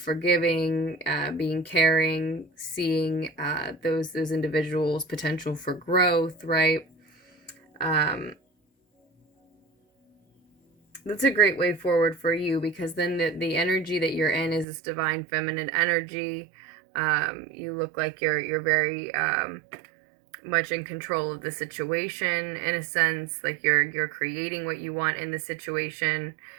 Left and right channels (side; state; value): left; drops out; at 14.7 s